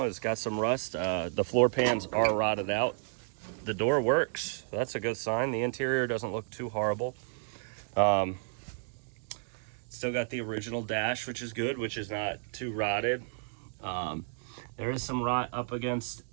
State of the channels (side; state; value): left; silent; digital silence